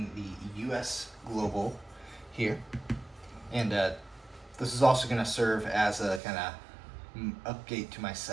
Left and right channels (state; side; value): drops out; left; at 6.2 s